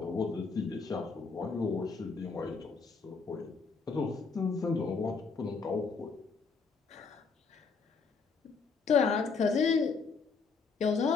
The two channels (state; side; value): quieter; right; 4.8 dB